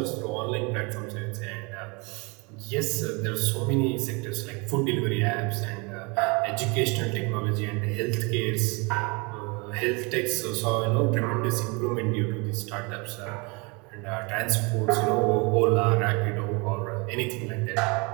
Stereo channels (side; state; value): left; quieter; 29.3 dB